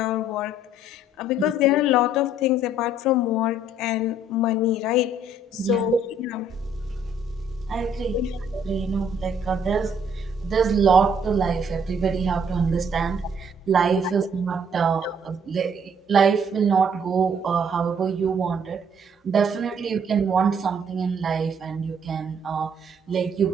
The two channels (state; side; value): normal; both; correlation 0.63